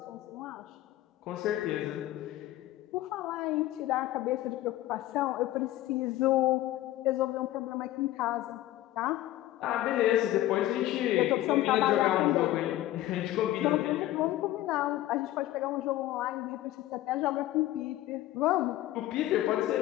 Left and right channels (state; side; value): quieter; right; 14.9 dB